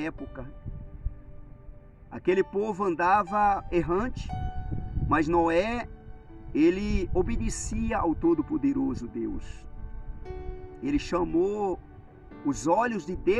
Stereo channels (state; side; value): identical; both; correlation 1.00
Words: Aquele povo andava errante, mas Noé, ele obedecia ao Todo-Poderoso Deus. Ele chamou os olhos de